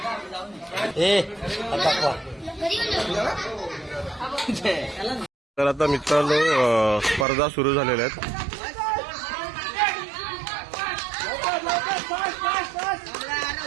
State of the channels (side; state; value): left; drops out; at 7.2 s